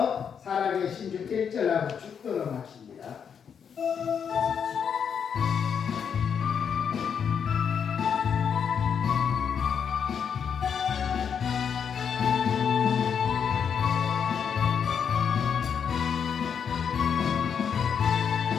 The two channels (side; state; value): right; quieter; 7.3 dB